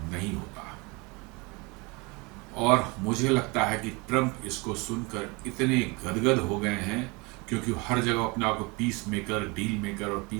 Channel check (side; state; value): left; quieter; 27.3 dB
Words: नहीं होता। और मुझे लगता है कि ट्रंप इसको सुनकर इतने गदगद हो गए हैं, क्योंकि हर जगह अपने आप को पीस मेकर, डील मेकर और